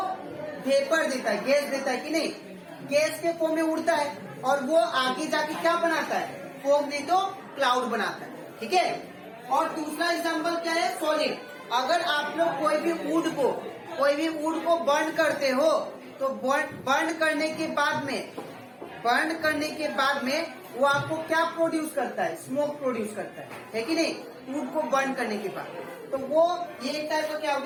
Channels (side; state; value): both; identical; correlation 1.00